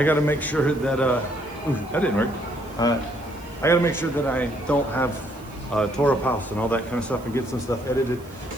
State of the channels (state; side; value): noise; right; hiss, 25 dB below the sound